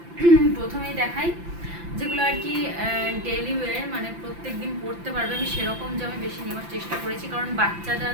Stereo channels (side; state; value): left; late; 5.9 ms